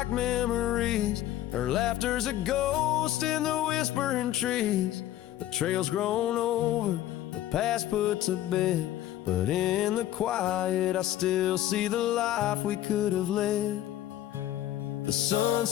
memories. Her laughter's a ghost in the whispering trees. The trail's grown over, the past put to bed, but in the quiet I still see the life we could have led. The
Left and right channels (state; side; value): quieter; right; 13.3 dB